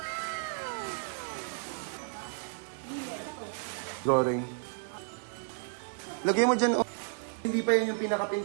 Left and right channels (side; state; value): left; silent; digital silence